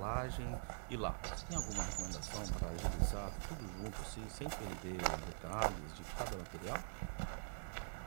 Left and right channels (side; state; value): left; silent; digital silence